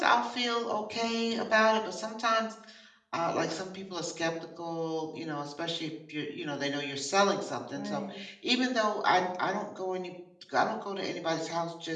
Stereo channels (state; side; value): identical; both; correlation 1.00